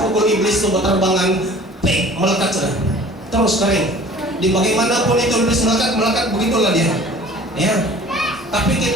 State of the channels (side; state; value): both; normal; correlation 0.47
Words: pukul iblis itu berterbangan, melekat sudah, terus kering. Di bagaimanapun itu iblis melekat begitulah dia. Ya. Tapi